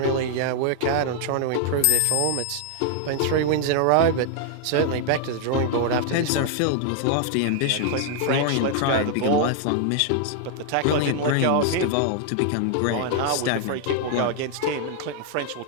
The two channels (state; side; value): different; both; correlation 0.00